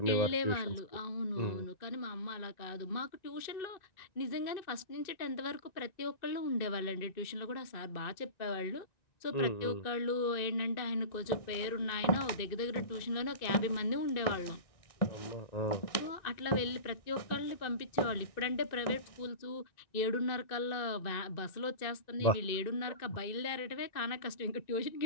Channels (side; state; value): right; late; 1.9 ms